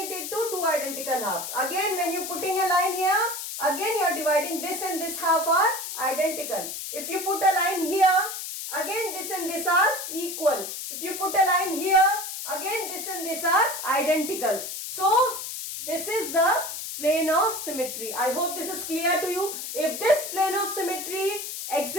into two identical halves. Again, when you putting a line here, again you are dividing this and this half are identical. If you put a line here, again this and this are equal. If you put a line here, again this and this are identical. So, this is the plane of symmetry. I hope this is clear to you. If this plane of symmetry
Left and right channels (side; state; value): left; noise; hiss, 7 dB below the sound